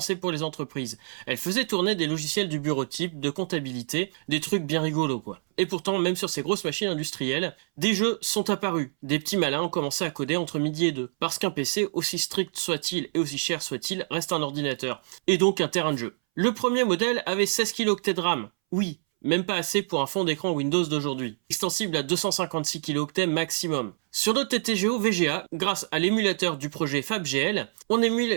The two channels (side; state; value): left; silent; 60 dB below the other